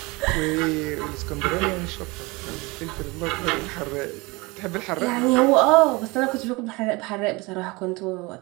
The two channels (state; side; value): quieter; left; 24.7 dB